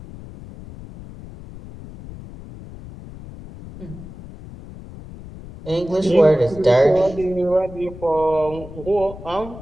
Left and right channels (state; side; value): noise; left; rumble, 15 dB below the sound